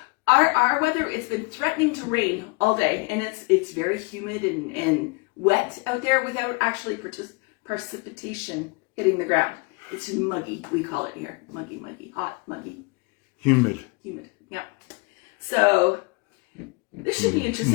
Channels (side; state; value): right; quieter; 29.5 dB